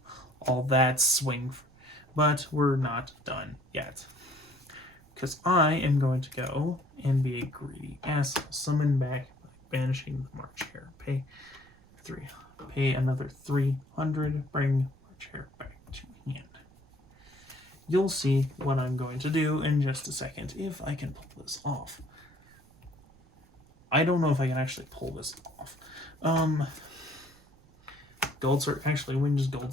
all that swing, but we're not done yet. Because I am going to go and be a greedy asshole. Summon back by banishing the March Hare. Pay another 300. Bring March Hare back to hand. You'll see what I'm going to do in just a second if I can pull this off. I don't know if I can actually pull this off. Gold Sark. Actually, we can just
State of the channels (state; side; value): noise; right; rumble, 27 dB below the sound